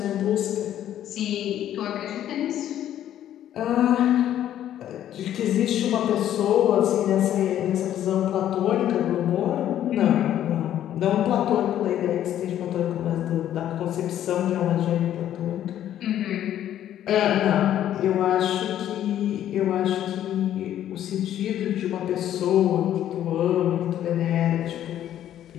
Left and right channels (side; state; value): right; quieter; 11.4 dB